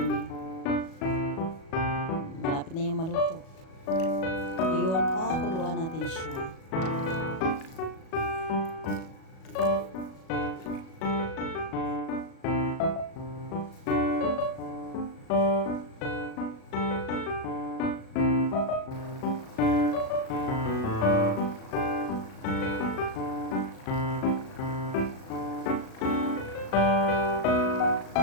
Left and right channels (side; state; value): right; late; 37 ms